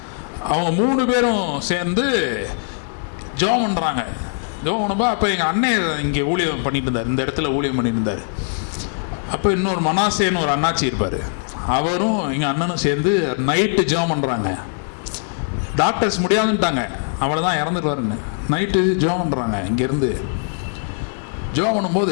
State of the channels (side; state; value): right; silent; digital silence